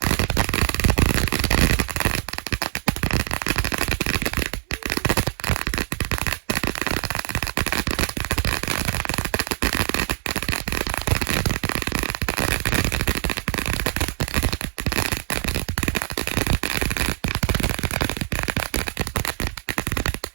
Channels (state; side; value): silent; left; 57 dB below the other